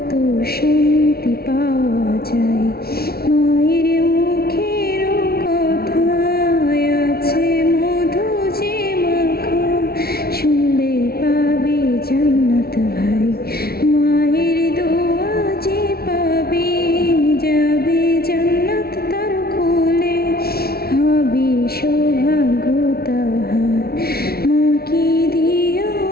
শান্তি পাওয়া যায়। মায়ের মুখের কথায় আছে মধু যে মাখা, শুনলে পাবে জান্নাত ভাই। মায়ের দোয়া যে পাবে যাবে জান্নাত তার কোলে, হবে সৌভাগ্য তাহার। মাকে দিও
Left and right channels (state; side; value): late; right; 0.44 ms